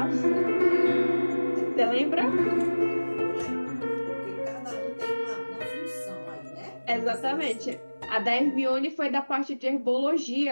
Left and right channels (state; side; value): inverted; both; correlation -1.00